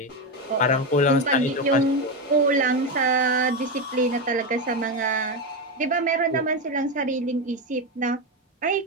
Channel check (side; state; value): both; normal; correlation 0.11